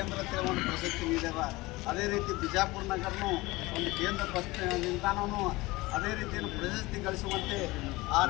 ಅಂತೇಳಿ ಒಂದು ಪ್ರಶಸ್ತಿ ನೀಡ್ಯಾರ, ಅದೇ ರೀತಿ ಬಿಜಾಪುರ ನಗರನೂ ಒಂದು ಕೇಂದ್ರ ಬಸ್ ನಿಲ್ದಾಣವೂ ಅದೇ ರೀತಿಯನ್ನು ಪ್ರಶಸ್ತಿ ಗಳಿಸುವಂತೆ ಆ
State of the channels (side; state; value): right; quieter; 21.0 dB